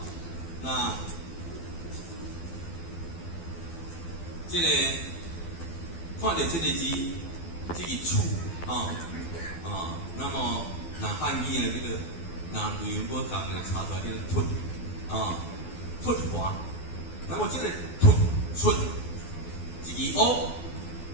那这个看到这个字，这个处那么那汉语呢这个那语言不讲呢查出来叫做凸华，那么这个凸出一个乌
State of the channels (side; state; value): right; late; 12 ms